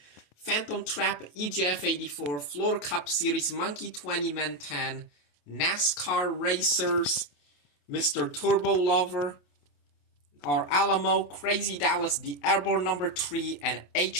Phantom Trap, EJF 84, Floor Cup Series, Monkey 20 Man 10, NASCAR Racers, Mr. Turbo Lover, our Alamo, Crazy Dallas, the Airborne number 3, and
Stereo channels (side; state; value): right; late; 28 ms